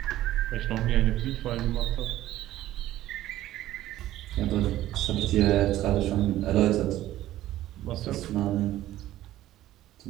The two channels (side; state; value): left; quieter; 14.3 dB